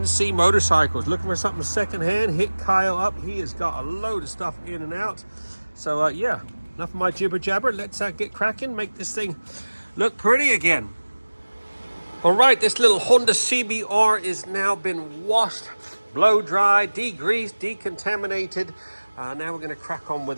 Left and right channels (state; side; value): inverted; both; correlation -1.00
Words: Motorcycles. Looking for something secondhand? Hit Kyle up. He has got a load of stuff in and out. So yeah, enough of my jibber jabber. Let's get cracking, make this thing look pretty again. All right, this little Honda CBR is now been washed, blow dry, degreased, decontaminated. Now we're going to crack on